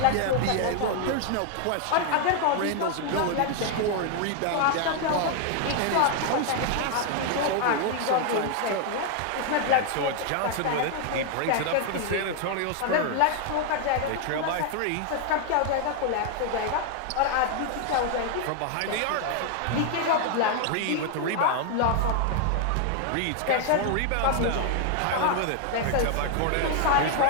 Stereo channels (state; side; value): different; both; correlation 0.00